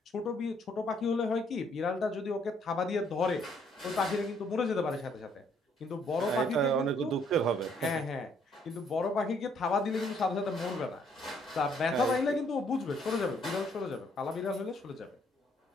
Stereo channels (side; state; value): both; normal; correlation 0.67